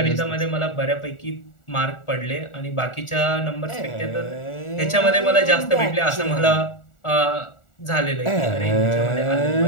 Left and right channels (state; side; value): late; right; 1.4 ms